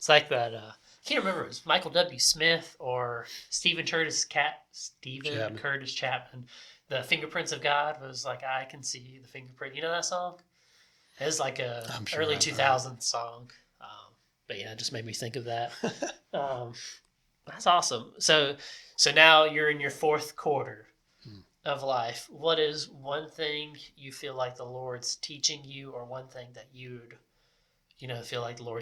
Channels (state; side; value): identical; both; correlation 1.00